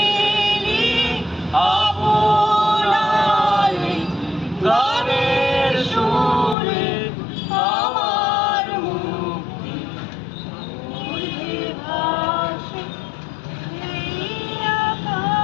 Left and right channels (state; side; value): drops out; right; at 6.6 s